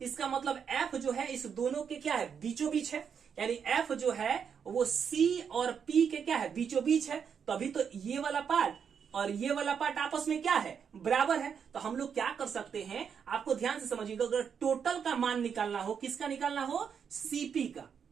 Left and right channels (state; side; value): quieter; left; 7.1 dB